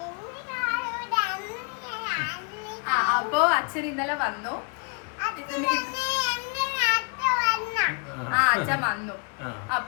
അപ്പോ അച്ഛൻ ഇന്നലെ വന്നു. അച്ഛൻ വന്നു.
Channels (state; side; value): quieter; right; 35.1 dB